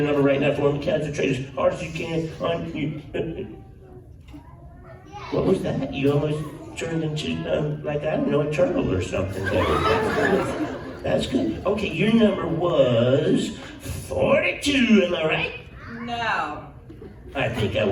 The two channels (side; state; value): both; identical; correlation 1.00